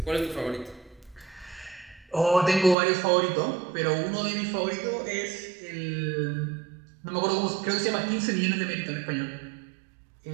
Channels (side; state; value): left; drops out; at 2.8 s